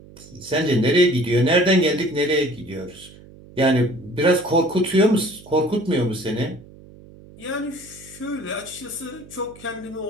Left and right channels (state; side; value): noise; right; hum, 21 dB below the sound